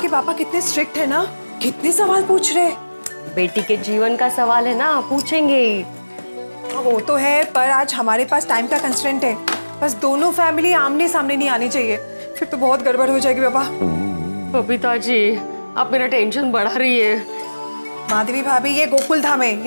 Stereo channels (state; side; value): inverted; both; correlation -1.00